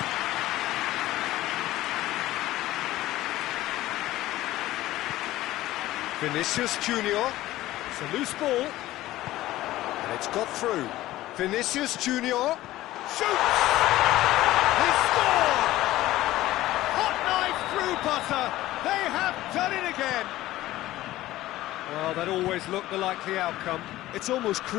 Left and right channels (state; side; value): quieter; right; 16.0 dB